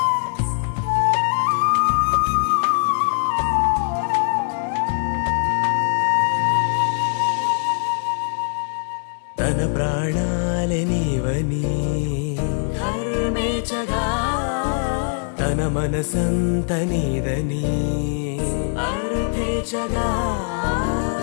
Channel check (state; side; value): silent; right; 64 dB below the other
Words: మన మనసంత నీదని అర్థేచగా